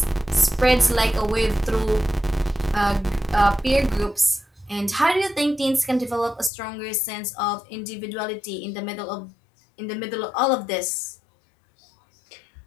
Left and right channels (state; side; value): drops out; right; at 6.5 s